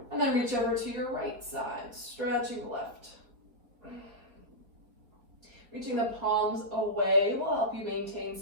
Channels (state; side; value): late; left; 4.0 ms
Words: and then reach over to your right side, stretching left. Reaching the palms away will help you maintain